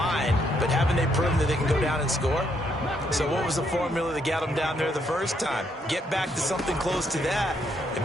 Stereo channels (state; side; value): normal; both; correlation 0.74